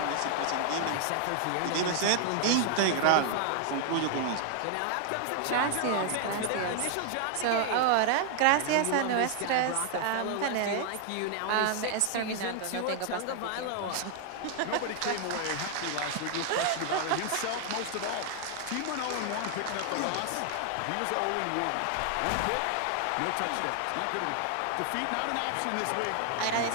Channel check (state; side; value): different; both; correlation 0.00